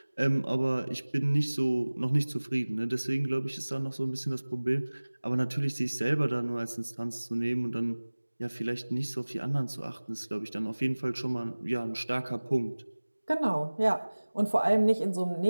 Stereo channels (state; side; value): inverted; both; correlation -1.00